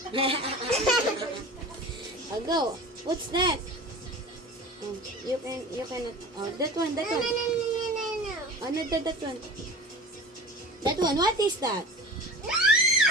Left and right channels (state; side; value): normal; both; correlation 0.37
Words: I'll go. What's that? Oh, you cannot. Oh, that one. No. Oh, no, that one. That one. What is that? No.